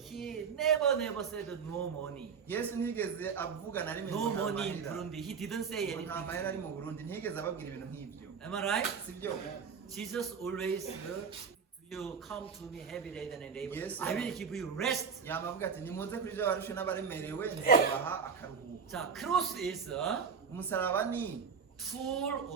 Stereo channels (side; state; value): left; quieter; 6.1 dB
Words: never said no money. yesu ntiyigeze avuga na rimwe No ngo nta money in mahera. Burundi. He didn't say Ngo nta anything. mahera ari mu burundi ntiyigeze ababwira ibintu nk'ibyo Am I right? sibyo Jesus always you come to me heavy laden and labor. Yes, I sir. will give you rest. yama avuga ati nimuze kuri ibyo barushe n'abaremerewe nzabaha akaruhuko 자, cross is a umusaraba ni tool